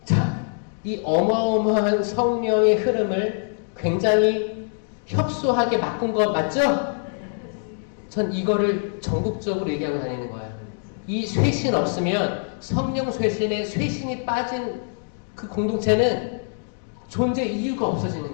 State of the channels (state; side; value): silent; right; digital silence